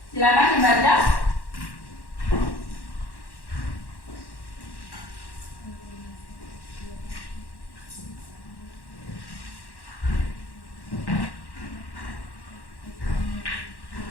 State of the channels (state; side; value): late; right; 1.1 ms